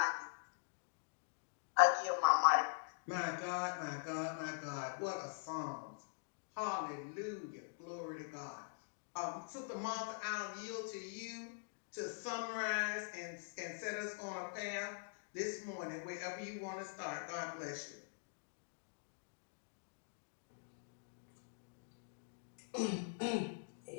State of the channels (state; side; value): silent; right; digital silence